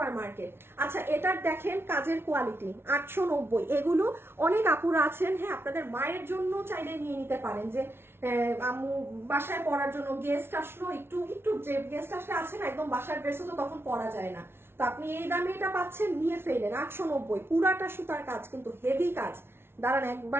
মার্কেট। আচ্ছা এটার দেখেন কাজের কোয়ালিটি, 890। এগুলো অনেক আপুরা আছেন, হ্যাঁ আপনাদের মায়ের জন্য চাইলে নিয়ে নিতে পারেন, যে আম্মু বাসায় পরার জন্য, গেস্ট আসলো, একটু যে গেস্ট আসলে আছে না একদম বাসার ড্রেসও তো তখন পরা যায় না, তো আপনি এই দামে এটা পাচ্ছেন, নিয়ে ফেলেন। 890, পুরাটা সুতার কাজ, কিন্তু হেভি কাজ। দাঁড়ান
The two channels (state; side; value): late; left; 0.12 ms